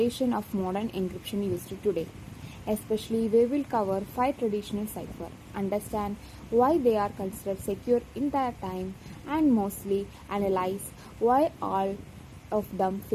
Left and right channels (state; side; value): identical; both; correlation 1.00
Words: of modern encryption used today. Especially, we will cover 5 traditional cipher, understand why they are considered secure in their time, and mostly analyze why all of them